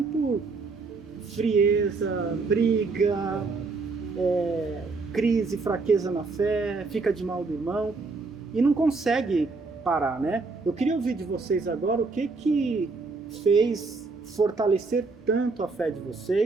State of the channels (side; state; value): left; quieter; 4.0 dB